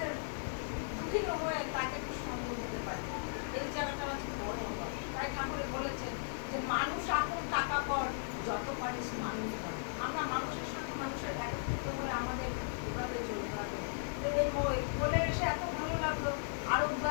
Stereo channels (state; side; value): silent; right; digital silence